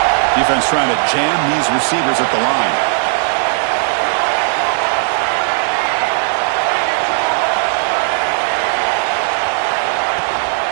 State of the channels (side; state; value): left; silent; 67 dB below the other